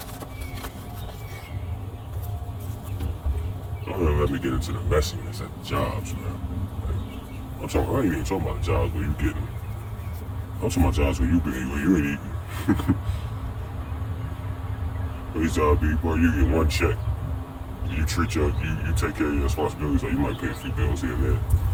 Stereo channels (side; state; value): both; identical; correlation 1.00